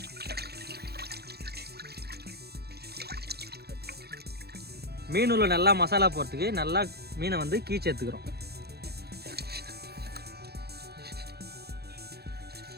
மீன் உள்ள நல்லா மசாலா போகிறதுக்கு நல்லா மீனை வந்து கீச்சு எடுத்துக்கிறோம்.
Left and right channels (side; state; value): left; late; 0.47 ms